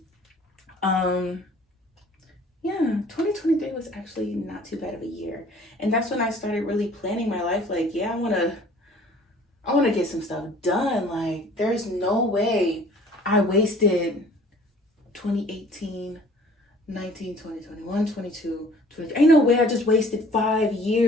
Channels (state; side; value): normal; both; correlation 0.52